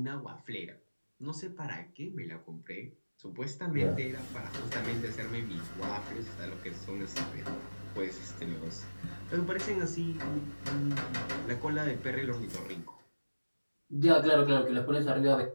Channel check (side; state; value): both; inverted; correlation -1.00